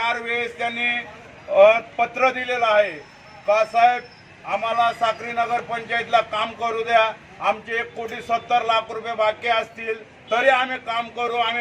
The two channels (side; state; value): both; identical; correlation 1.00